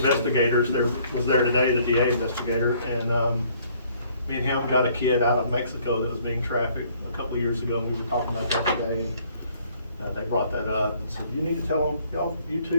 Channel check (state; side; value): inverted; both; correlation -0.61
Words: was there today, the DA investigator, and me and him got a kid out of Mexico that was being trafficked a couple of years ago, and we were talking about that today. They brought that up and said, you need to tell them, y'all, you